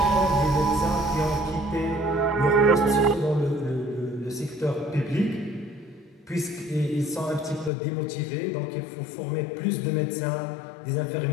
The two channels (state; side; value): drops out; right; at 7.7 s